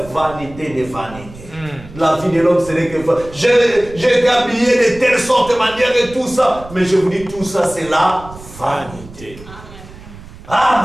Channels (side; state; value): right; noise; rumble, 17 dB below the sound